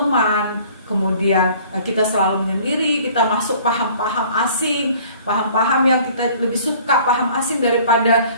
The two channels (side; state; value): both; inverted; correlation -0.52